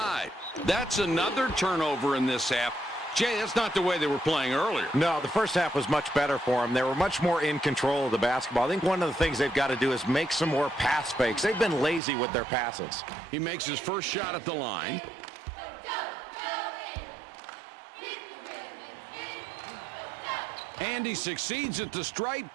That's another turnover in this half. Jay, that's not the way they were playing earlier. No, the first half was much better for them. They were much more in control of the basketball. I think one of the things they've got to do is make some more pass fakes. They've been lazy with their passes. He makes his first shot at the line. And he succeeds at the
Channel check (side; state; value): left; drops out; at 12.0 s